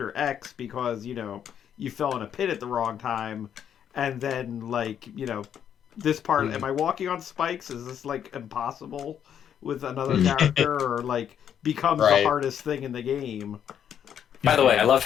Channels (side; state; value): right; quieter; 9.0 dB